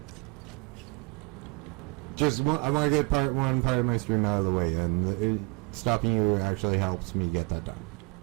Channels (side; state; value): left; quieter; 27.7 dB